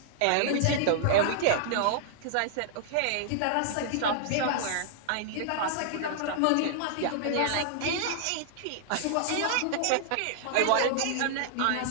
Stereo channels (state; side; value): different; both; correlation -0.01